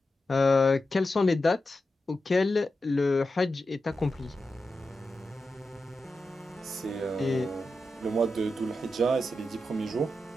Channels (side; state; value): both; normal; correlation 0.90